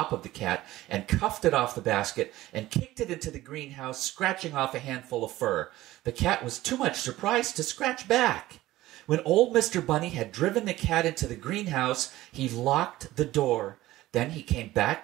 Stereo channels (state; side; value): quieter; left; 16.4 dB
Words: of the cat and cuffed it off the basket and kicked it into the greenhouse, scratching off a handful of fur. The cat was too much surprised to scratch back. When old Mr. Bunny had driven the cat into the greenhouse, he locked the door. Then he came back